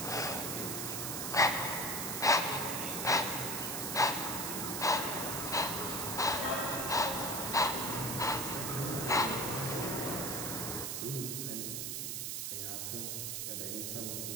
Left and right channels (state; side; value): noise; right; hiss, 2 dB below the sound